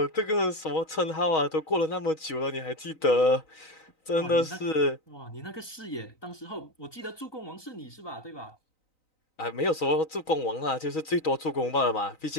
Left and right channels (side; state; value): right; late; 3.9 ms